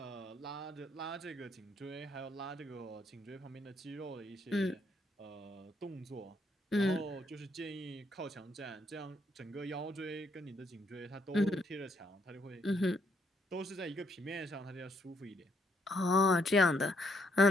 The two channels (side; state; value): both; normal; correlation 0.72